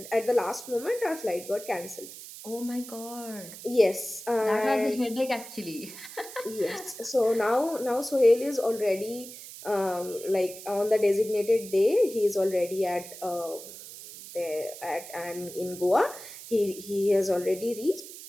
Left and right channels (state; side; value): noise; right; hiss, 14 dB below the sound